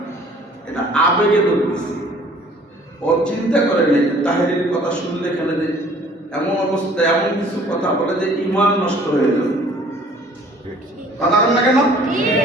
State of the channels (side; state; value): both; normal; correlation 0.54